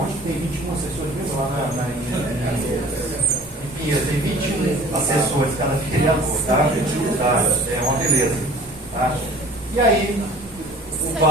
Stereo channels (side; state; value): both; normal; correlation 0.47